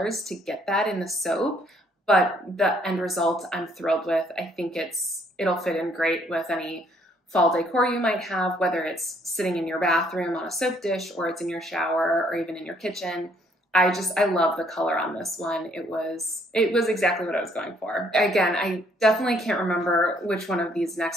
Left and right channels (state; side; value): normal; both; correlation 0.66